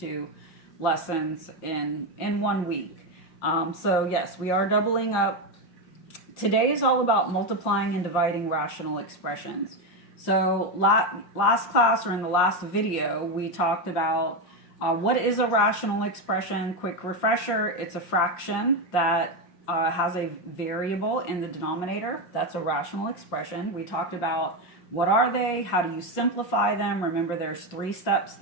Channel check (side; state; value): right; late; 5.6 ms